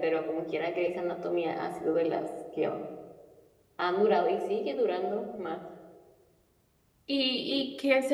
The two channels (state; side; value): identical; both; correlation 1.00